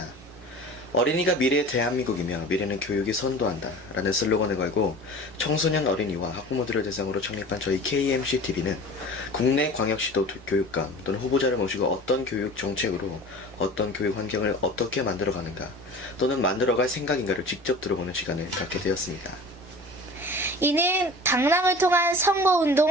어린이가 미래의 대한민국이며 미래는 교육이 선도한다 라는 슬로건을 걸고 청소년 어린이와 학부모들을 대상으로 창립한 저희 KMCTV는 국내 광역시도 교육감 또는 후보자를 모시고 어떤 교육 정책으로 어떤 교육 환경을 어떻게 만들어가는가 또는 만들어갈 생각인가를 직접 들어보는 시간을 갖게 되었습니다. 이는 당락을 통한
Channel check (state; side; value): normal; both; correlation 0.39